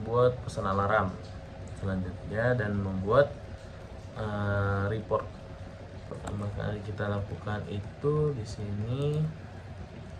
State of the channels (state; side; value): identical; both; correlation 1.00